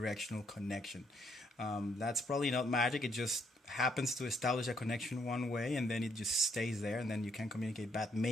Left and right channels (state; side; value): normal; both; correlation 0.71